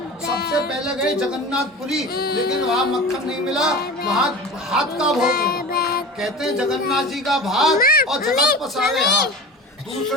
सबसे पहले गए जगन्नाथपुरी, लेकिन वहाँ मक्खन नहीं मिला, वहाँ भात का भोग मिला। कहते हैं जगन्नाथ जी का भात और जगत पसारे हाथ।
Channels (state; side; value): normal; both; correlation 0.33